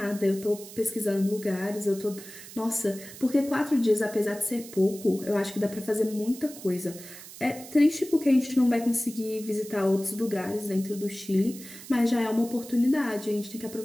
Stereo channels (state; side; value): noise; right; hiss, 15 dB below the sound